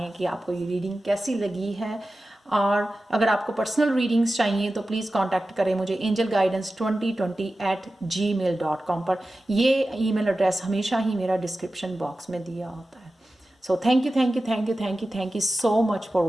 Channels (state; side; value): normal; both; correlation 0.94